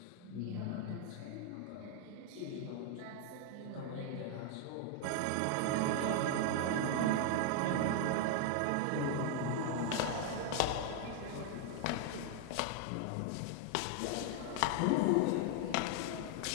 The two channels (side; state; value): both; different; correlation 0.00